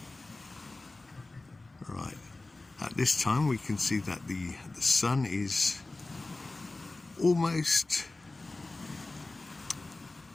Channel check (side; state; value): right; quieter; 3.1 dB